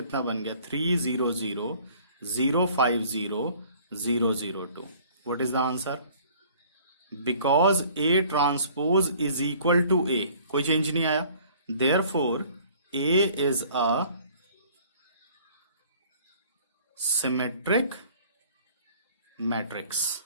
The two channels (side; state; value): both; inverted; correlation -0.53